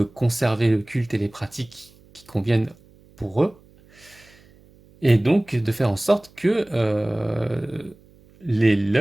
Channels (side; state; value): right; noise; hum, 28 dB below the sound